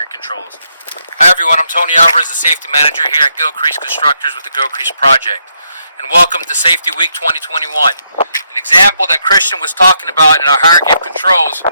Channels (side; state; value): both; inverted; correlation -0.77